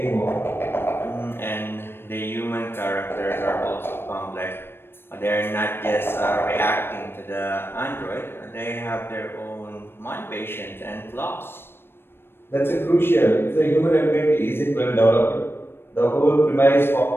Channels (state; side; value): late; right; 0.11 ms